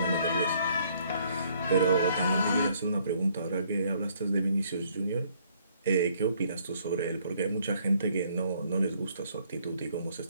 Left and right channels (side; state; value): both; inverted; correlation -0.65